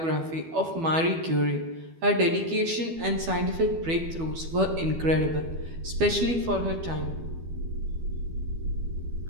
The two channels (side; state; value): left; late; 12 ms